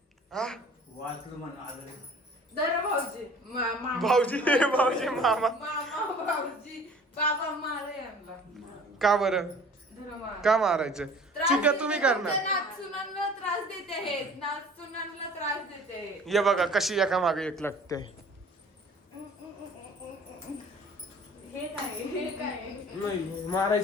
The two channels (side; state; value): both; normal; correlation 0.48